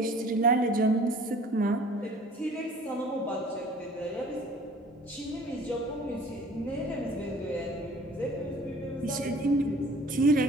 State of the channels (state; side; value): normal; both; correlation 0.49